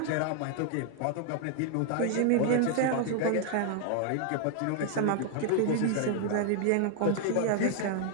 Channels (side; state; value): both; different; correlation 0.00